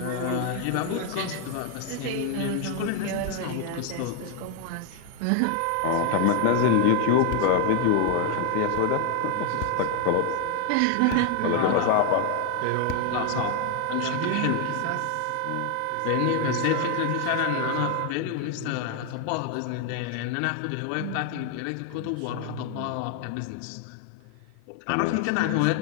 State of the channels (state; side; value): different; both; correlation 0.01